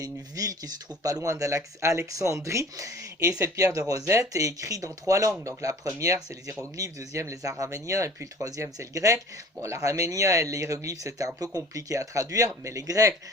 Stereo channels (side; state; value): both; normal; correlation 0.46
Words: une ville qui se trouve pas loin d'Alexandrie, et cette pierre de Rosette est écrite dans 3 langues. Donc la première c'est les hiéroglyphes, deuxième les araméniens, et puis le troisième c'est le grec. Bon, l'araménien et les hiéroglyphes c'était un peu compliqué à traduire, mais les grecs,